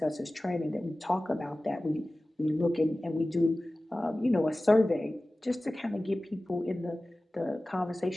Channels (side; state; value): both; normal; correlation 0.97